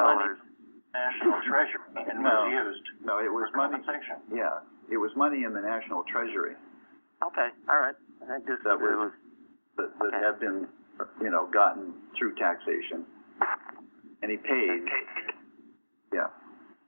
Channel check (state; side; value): inverted; both; correlation -1.00